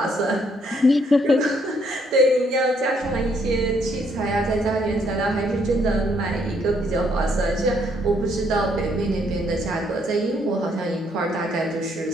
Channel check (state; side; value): normal; both; correlation 0.70